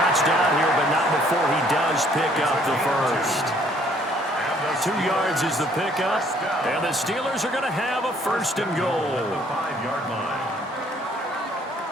down here, but not before he does pick up the first. 2 yards is the pickup. And the Steelers are going to have a first and goal. At the 5-yard line.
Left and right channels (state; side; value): normal; both; correlation 0.62